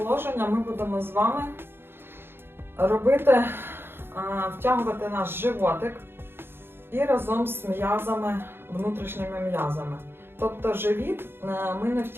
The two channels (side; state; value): left; late; 0.11 ms